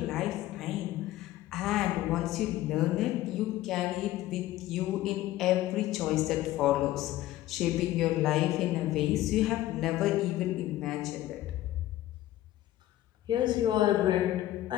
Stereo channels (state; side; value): quieter; right; 14.8 dB